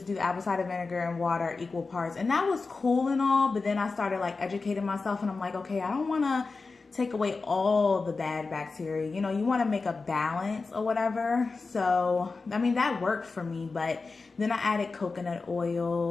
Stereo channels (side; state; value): right; quieter; 4.1 dB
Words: do the apple cider vinegar and water equal parts, and that was cool and all, but then I started like educating myself, and I'm like, okay, I don't want to take away all the bad bacteria. You know, you want to make a balance or whatever. So, I mean, that worked for me, but then I added coconut